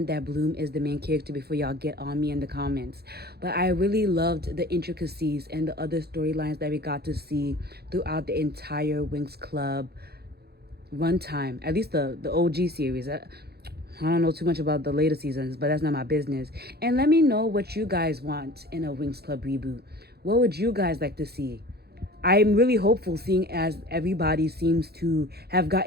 that Bloom is the main character before y'all get on me in the comments, but I really loved the intricacies and the other storylines that we got to see throughout the entire Winx Club runtime, at least the OG series. I don't know too much about the later seasons, but that's not my business. And let me know what you guys want in a Winx Club reboot. What would you guys like to see? I'm really hopeful, seeing as everybody seems to have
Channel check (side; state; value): left; late; 0.46 ms